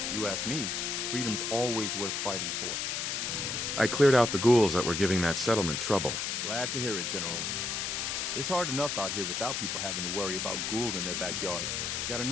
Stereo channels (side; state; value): left; noise; hiss, 1 dB below the sound